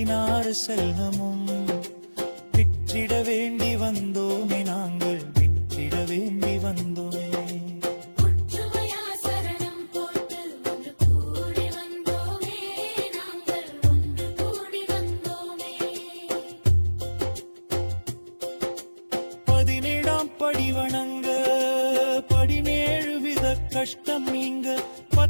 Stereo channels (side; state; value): both; inverted; correlation -1.00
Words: செல்வமும் விற்றிட வேண்டி வந்தோமே நாங்கள் விற்றிட வேண்டி வந்தோமே ஒற்றுமையா சரணம் போட்டு ஒன்று கூடி வந்தோமே நாங்கள் ஒன்று கூடி வந்தோமே 17ஆம் படி வணங்க 17 வித கஷ்டம் நீங்க